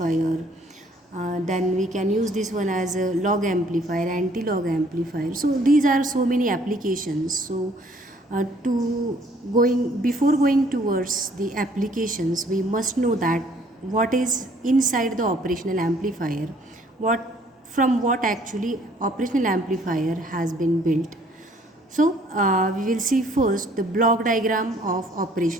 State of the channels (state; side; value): normal; both; correlation 0.60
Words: Then we can use this one as a log amplifier, anti-log amplifier. So these are so many applications. So before going towards the applications, we must know that what is inside the operational amplifier, what actually operational amplifier has been built. So we will see first the block diagram of